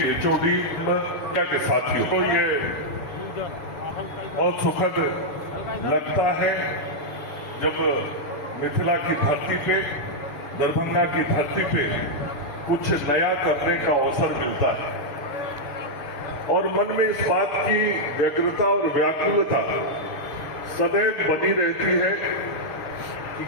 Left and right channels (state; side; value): late; right; 6.8 ms